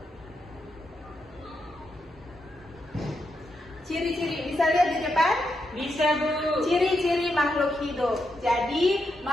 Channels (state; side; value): normal; both; correlation 0.83